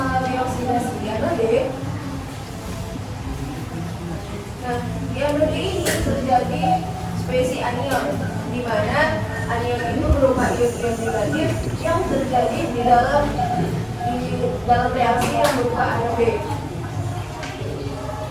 oksidasi di anode? Nah, di anode ini terjadi spesies anion, di mana anion itu berupa ion-ion negatif yang terjadi di dalam reaksi yang berupa anode.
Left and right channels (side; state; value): both; identical; correlation 1.00